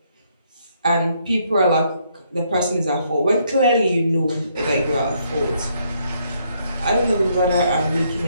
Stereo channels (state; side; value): inverted; both; correlation -0.72